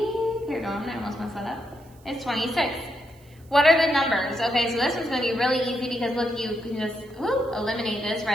here, I almost messed that up, is 26. What are the numbers? Okay, so this one's going to be really easy because look, you can just eliminate this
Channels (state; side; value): noise; right; hiss, 29 dB below the sound